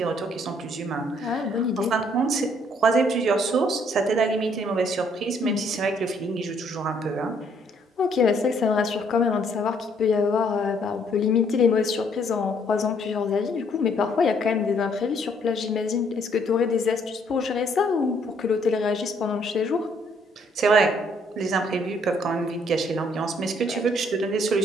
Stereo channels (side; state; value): both; normal; correlation 0.66